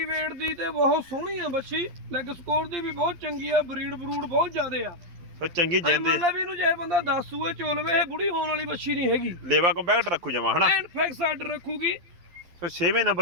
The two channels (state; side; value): late; left; 12 ms